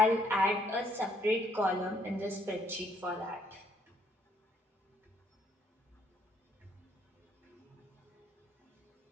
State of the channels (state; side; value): normal; both; correlation 0.68